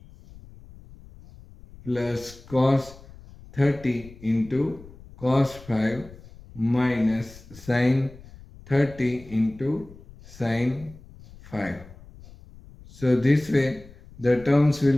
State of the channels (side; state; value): left; noise; rumble, 20 dB below the sound